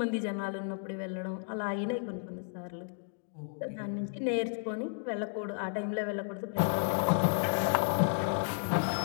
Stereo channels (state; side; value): silent; right; digital silence